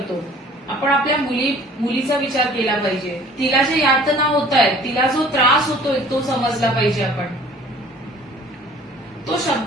आपण आपल्या मुलीचा विचार केला पाहिजे. तिला जे यातना होत आहेत, तिला जो त्रास होतोय तो समजला पाहिजे. आपण तो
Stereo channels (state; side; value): normal; both; correlation 0.50